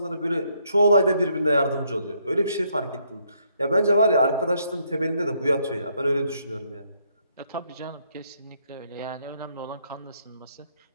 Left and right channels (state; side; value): inverted; both; correlation -0.72